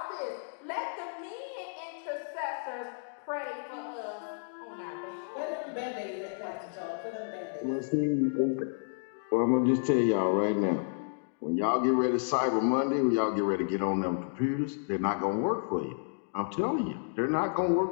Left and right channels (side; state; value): right; silent; digital silence